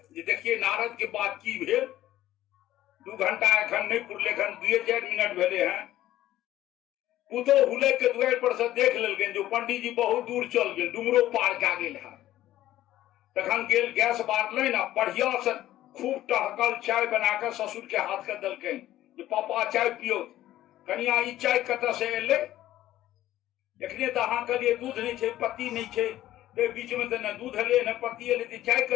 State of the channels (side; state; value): right; quieter; 14.1 dB